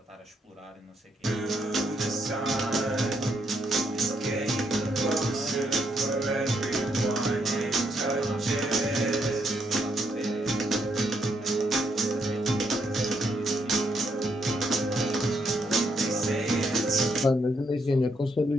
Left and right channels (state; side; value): normal; both; correlation 0.75